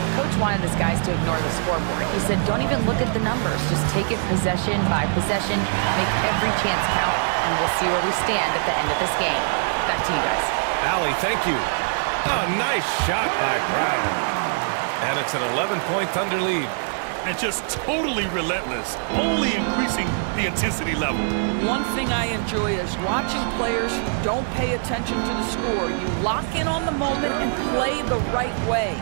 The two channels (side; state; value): left; silent; digital silence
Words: Coach wanted his guys to ignore the scoreboard. He said, don't even look at the numbers. Just take it possession by possession, make every chance count, and we'll see where we stand at the end of this game. Back to you guys. Allie, thank you. A nice shot by Brown. And it's an 11-point Thunder lead. And just totally relentless, only increasing the intensity level. One thing I enjoy is watching players who don't pay attention to the score. You lock in on the moment and play the right way.